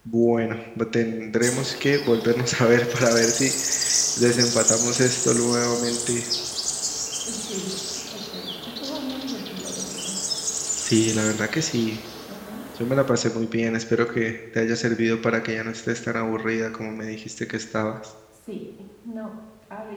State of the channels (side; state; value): both; identical; correlation 1.00